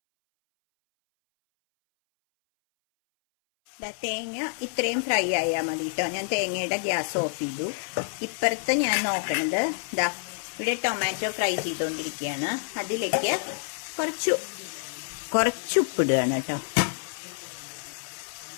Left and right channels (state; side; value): silent; right; 60 dB below the other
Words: തേങ്ങ ഇത്രയും ഫ്രൈ ആയാൽ മതി കേട്ടോ. ഞാൻ തേങ്ങയുടെ ഗ്യാസ് ഓഫ് ചെയ്തു. ഇപ്പുറത്ത് ഞാൻ നോക്കണത് ഇവിടെ ടൊമാറ്റോ ഫ്രൈ ചെയ്തുകൊണ്ടിരിക്കുകയാണ്. അതിലേക്ക് കുറച്ച് ഉപ്പിടുകയാണ് കേട്ടോ.